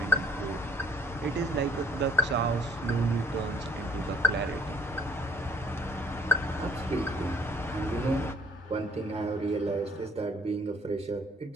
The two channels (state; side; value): normal; both; correlation 0.57